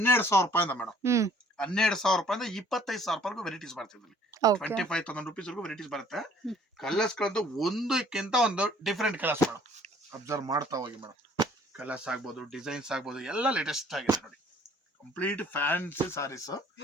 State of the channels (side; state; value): both; normal; correlation 0.57